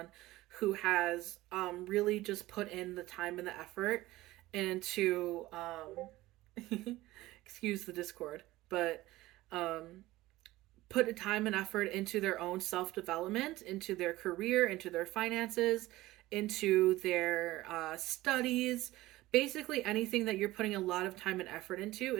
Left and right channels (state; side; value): quieter; left; 17.6 dB